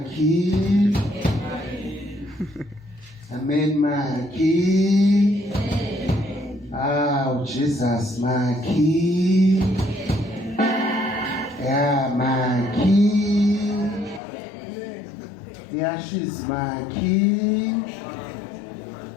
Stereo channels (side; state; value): right; drops out; at 14.2 s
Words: Amen makhi. Jesus makhi. Yeah makhi. Yeah she's makhi.